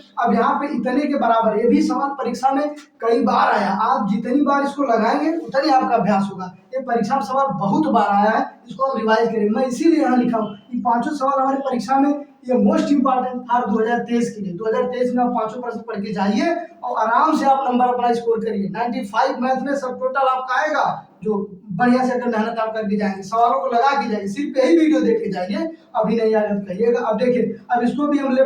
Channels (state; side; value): identical; both; correlation 1.00